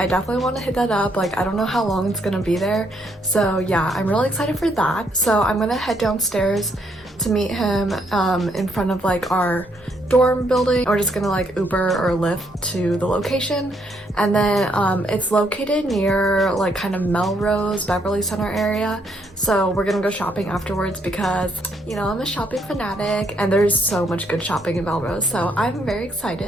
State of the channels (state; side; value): normal; both; correlation 0.72